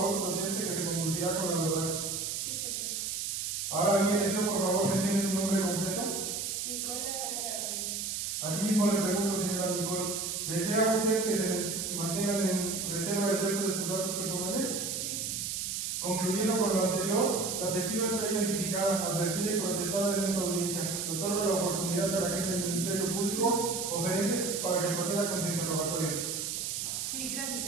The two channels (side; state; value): right; noise; hiss, 2 dB below the sound